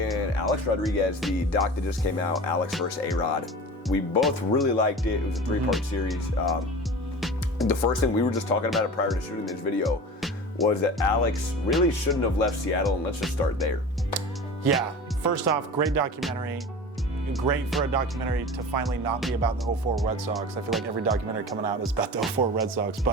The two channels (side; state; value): both; normal; correlation 0.35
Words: Alex Rodriguez, the doc that just came out, Alex versus ARod. We both really liked it. It was a three-part series. The first thing, we were just talking about it prior to shooting this video, was that Alex really shouldn't have left Seattle, and let's just start there. Yeah, first off, great documentary. Great for a documentary to finally not be about the 04 Red Sox. I feel like every documentary coming out is about the 04 Red Sox,